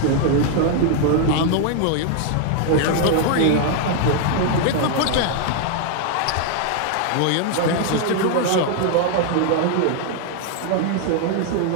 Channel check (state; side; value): different; both; correlation 0.00